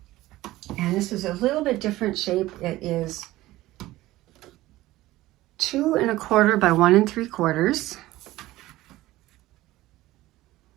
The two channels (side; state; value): left; quieter; 17.0 dB